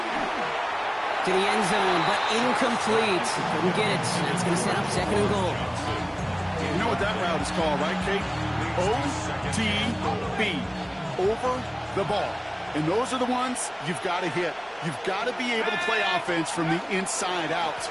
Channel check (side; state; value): both; identical; correlation 1.00